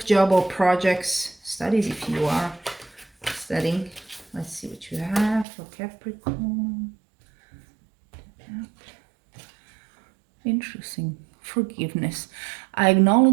job, or projects, studies, if you are studying. Let's see what you have for Capricorn. Interesting. Forgiveness. I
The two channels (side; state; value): left; drops out; at 5.5 s